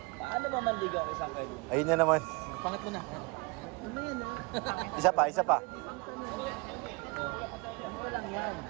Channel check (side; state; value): left; quieter; 28.4 dB